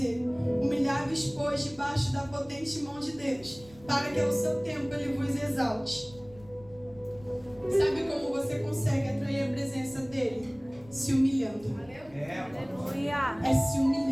humilhai-vos, pois, debaixo da potente mão de Deus, para que ao seu tempo ele vos exalte. Sabe como você consegue atrair a presença dele? Se humilhando. Aleluia. É se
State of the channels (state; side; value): noise; left; rumble, 23 dB below the sound